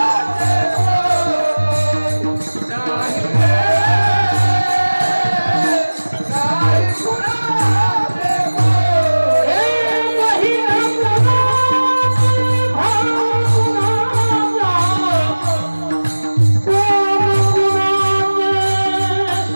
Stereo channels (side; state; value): both; inverted; correlation -1.00